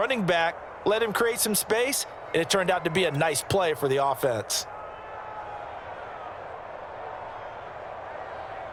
back, let him create some space, and it turned out to be a nice play for the offense.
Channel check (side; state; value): both; identical; correlation 1.00